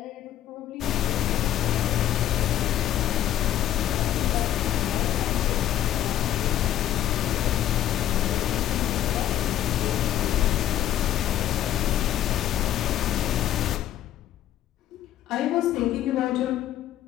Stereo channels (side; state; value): right; quieter; 12.0 dB